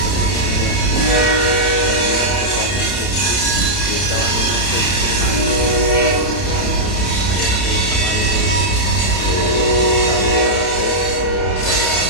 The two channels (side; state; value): right; late; 31 ms